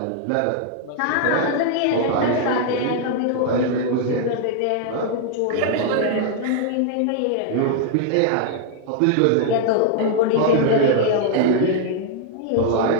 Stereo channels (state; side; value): different; both; correlation 0.00